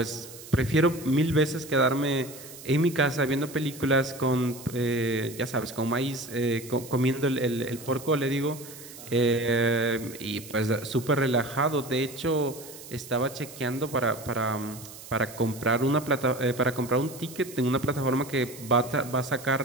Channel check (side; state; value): right; noise; hiss, 16 dB below the sound